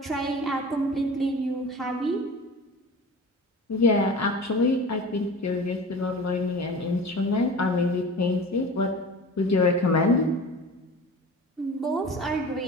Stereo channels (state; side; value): normal; both; correlation 0.36